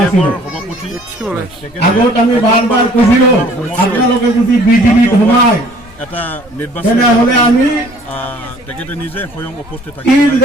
আগত আমি বাৰবাৰ কৈছিলো আপোনালোকে যদি বিজেপিত সোমায় এটা নিৰ্বাচন তেনেহ'লে আমি তেখেতে নিজে স্বয়ং উপস্থিত থাকি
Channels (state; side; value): normal; both; correlation 0.55